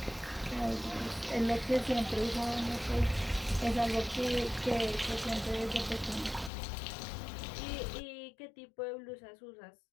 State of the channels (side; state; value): right; drops out; at 6.5 s